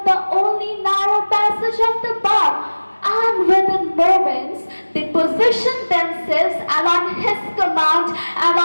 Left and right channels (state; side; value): inverted; both; correlation -1.00